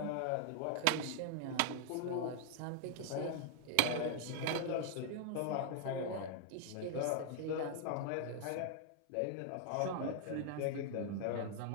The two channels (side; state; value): both; different; correlation 0.00